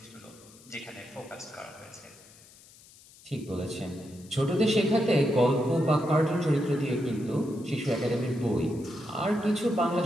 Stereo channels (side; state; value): left; noise; hiss, 23 dB below the sound